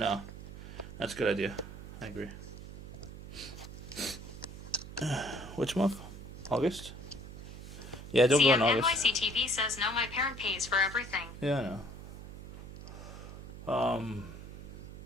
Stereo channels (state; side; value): noise; right; hum, 12 dB below the sound